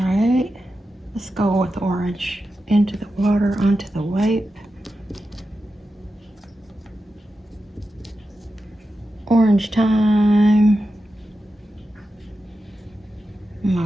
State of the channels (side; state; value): both; normal; correlation 0.90